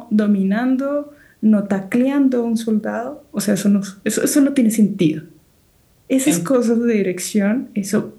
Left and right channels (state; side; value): identical; both; correlation 1.00